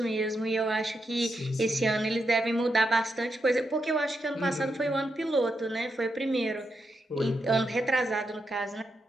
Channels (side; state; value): both; normal; correlation 0.84